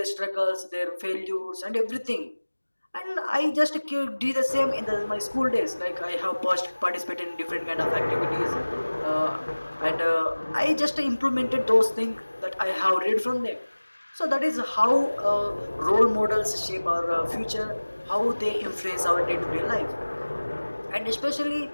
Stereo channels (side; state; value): both; inverted; correlation -1.00